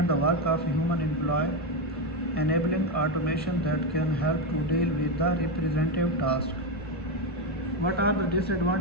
the work of a human employee, enabling automation that can help to deal with the repetitive tasks. What are the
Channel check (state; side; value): normal; both; correlation 0.09